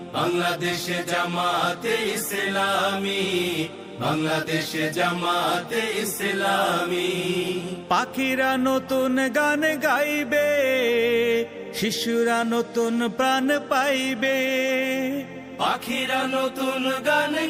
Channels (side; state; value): both; identical; correlation 1.00